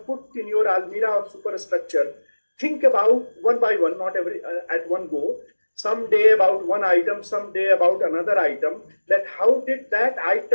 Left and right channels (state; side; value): inverted; both; correlation -1.00